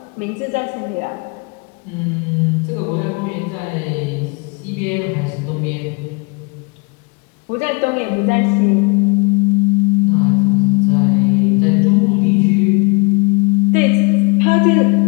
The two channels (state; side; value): quieter; right; 30.7 dB